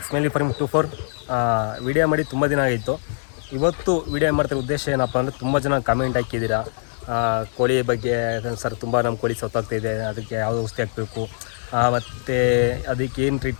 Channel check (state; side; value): silent; right; 60 dB below the other